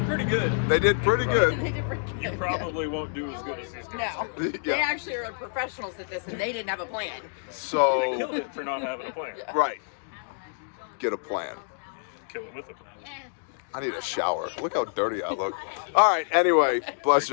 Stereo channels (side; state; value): right; silent; digital silence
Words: pretty good. They did pretty good. You probably won't do as good as these guys. No. Yeah. They actually are professionals at this, and they didn't have a plan. So They killed it for not having a plan. right. Get a plan. Kill it with a plan. I need a shower. Look how dirty I look. All right, anyway, bless